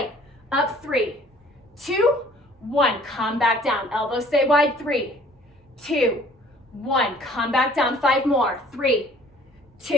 Up, 3, 2, 1. Come back down. Elbows stay wide. 3, 2, 1. Come back down. 5 more. 3,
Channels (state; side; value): normal; both; correlation 0.54